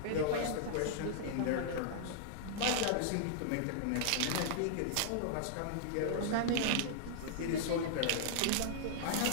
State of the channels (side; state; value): both; different; correlation -0.01